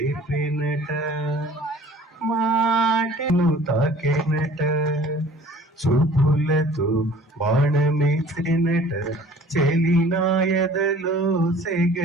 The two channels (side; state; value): both; normal; correlation 0.50